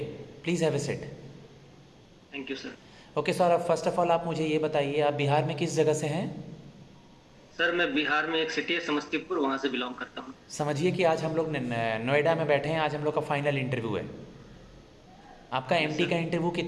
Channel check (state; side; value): identical; both; correlation 1.00